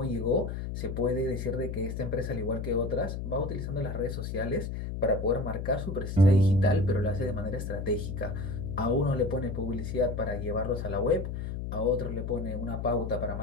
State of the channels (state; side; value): noise; left; hum, 5 dB below the sound